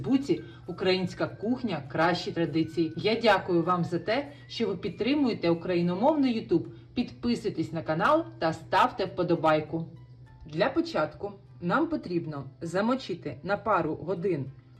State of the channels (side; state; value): both; identical; correlation 1.00